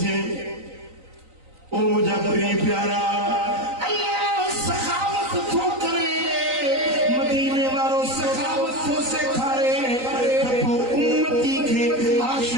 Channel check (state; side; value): late; left; 3.9 ms